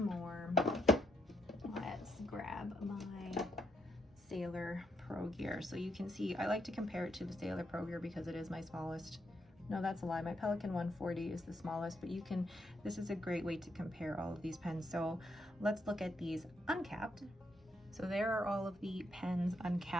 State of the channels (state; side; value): normal; both; correlation 0.77